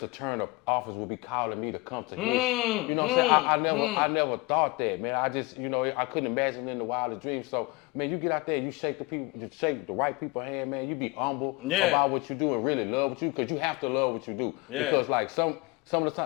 Turner office would be calling me to come to his. You know what I'm saying? I never thought that, man. I just, you know, I couldn't imagine in the wildest dreams. So, man, you get out there, you shake the right people's hand, man. You be humble about what you do and really love what you do, because you have to love what you do. Yeah. Because like some of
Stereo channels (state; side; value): quieter; right; 24.3 dB